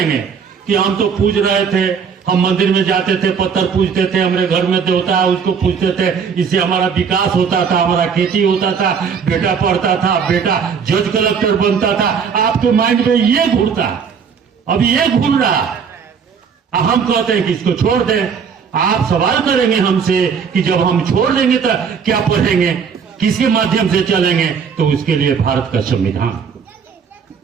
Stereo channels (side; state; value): left; quieter; 6.4 dB